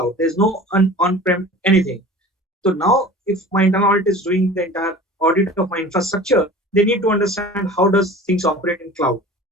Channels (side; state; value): both; normal; correlation 0.40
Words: There's no on-prem anything. So now if my internal audit is doing the entire audit of my infrastructure, they need to understand how does things operate in cloud.